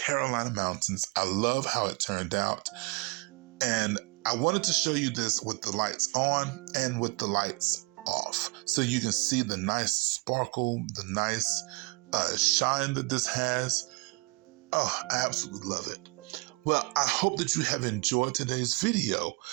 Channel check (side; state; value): left; quieter; 29.2 dB